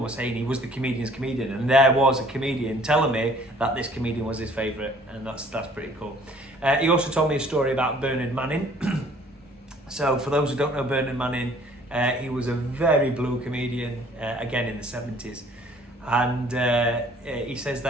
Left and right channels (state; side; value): normal; both; correlation 0.55